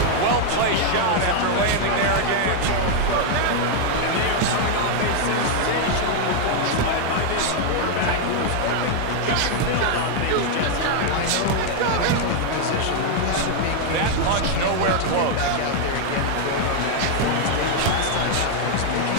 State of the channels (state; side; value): different; both; correlation 0.00